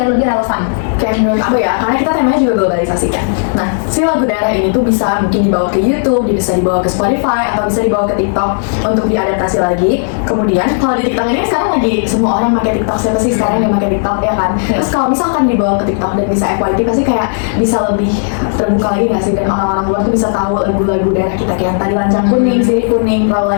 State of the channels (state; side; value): silent; right; digital silence